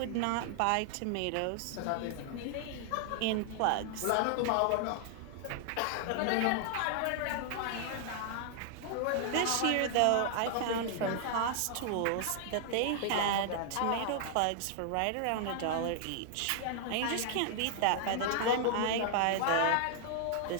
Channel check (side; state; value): both; different; correlation -0.01